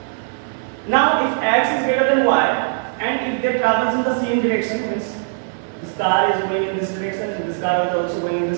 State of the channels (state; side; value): silent; left; 56 dB below the other